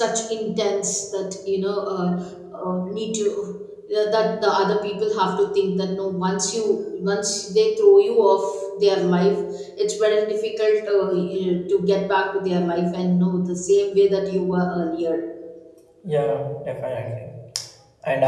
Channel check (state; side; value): identical; both; correlation 1.00